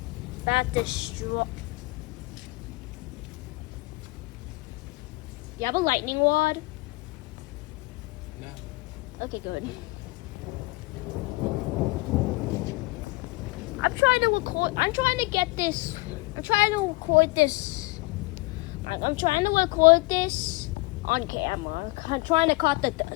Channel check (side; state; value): right; quieter; 23.7 dB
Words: That destroy. You have a lightning rod? No. Okay, good. I'm trying to record. I'm trying to get this. I'm trying to record this. I'm trying to record this on camera. I'm trying to